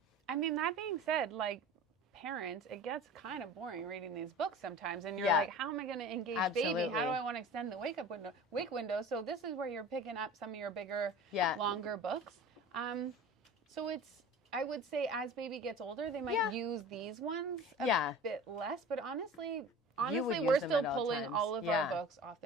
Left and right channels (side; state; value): both; normal; correlation 0.38